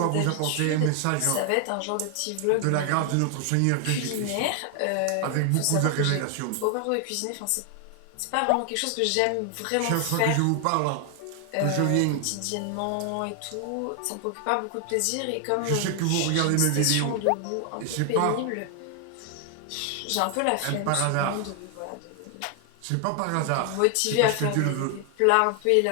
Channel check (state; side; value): different; both; correlation 0.00